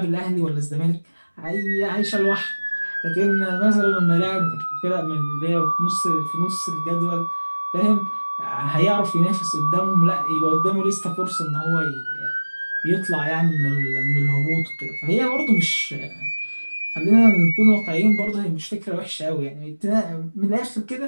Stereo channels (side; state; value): both; inverted; correlation -1.00